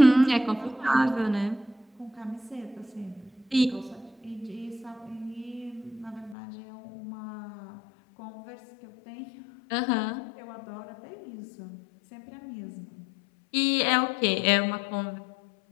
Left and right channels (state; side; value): drops out; right; at 6.4 s